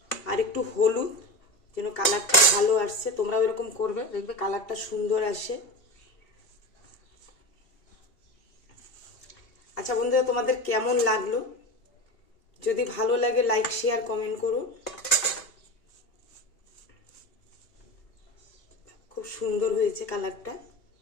আর একটু হলুদ, যেন কালারটা ভালো আসছে। তোমরাও এরকম করবে, দেখবে কালারটা সুন্দর আসে। আচ্ছা বন্ধুরা, তোমাদের কেমন লাগলো? যদি ভালো লাগে লাইক, শেয়ার, কমেন্ট করো। খুব সুন্দর হয়েছে কালারটা।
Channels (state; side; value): late; right; 2.8 ms